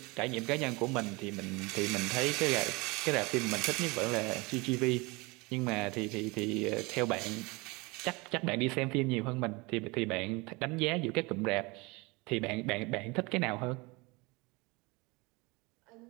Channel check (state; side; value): quieter; left; 25.5 dB